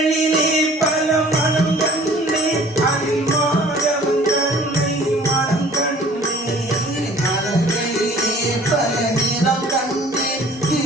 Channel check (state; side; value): normal; both; correlation 0.50